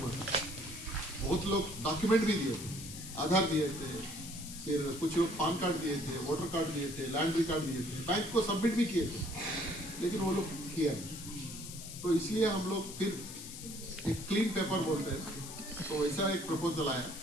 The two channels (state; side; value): noise; left; hiss, 11 dB below the sound